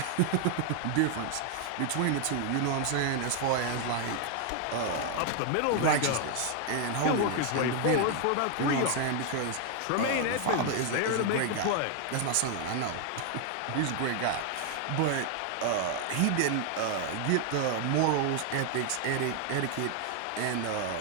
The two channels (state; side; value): different; both; correlation 0.00